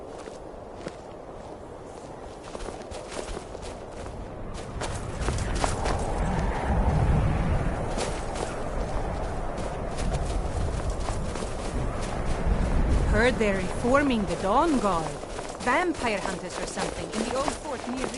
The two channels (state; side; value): identical; both; correlation 1.00